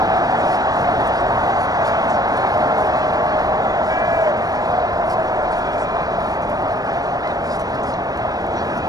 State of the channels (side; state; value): left; late; 0.18 ms